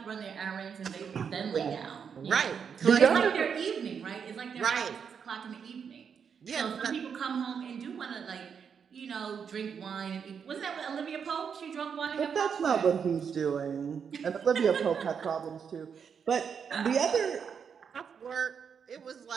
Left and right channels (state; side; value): quieter; left; 6.9 dB